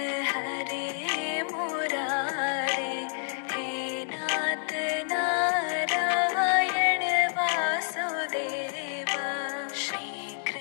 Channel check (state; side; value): silent; right; digital silence